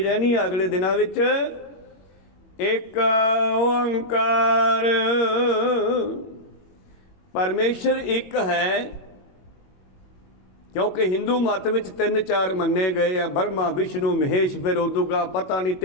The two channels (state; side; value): late; right; 21 ms